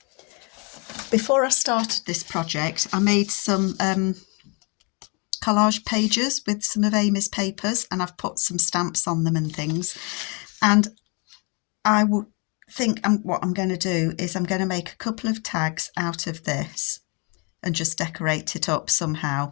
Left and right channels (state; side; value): quieter; right; 32.8 dB